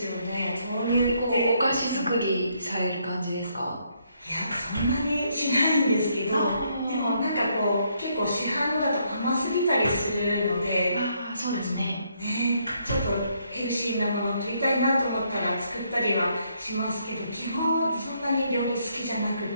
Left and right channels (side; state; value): both; inverted; correlation -0.73